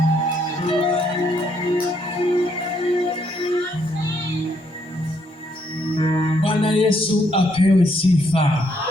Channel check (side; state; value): both; normal; correlation 0.72